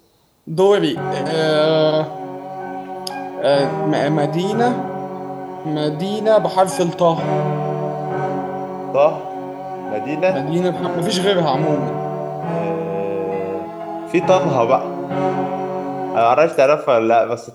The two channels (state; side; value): identical; both; correlation 1.00